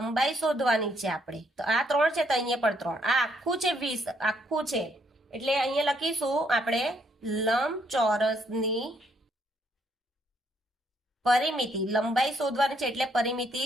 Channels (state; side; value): normal; both; correlation 0.71